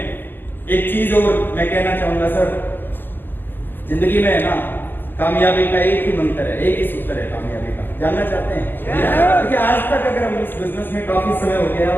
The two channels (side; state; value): right; late; 0.092 ms